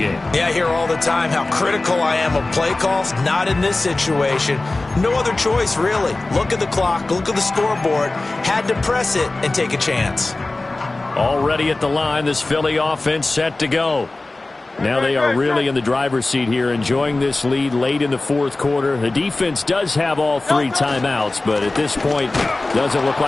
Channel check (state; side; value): quieter; right; 3.1 dB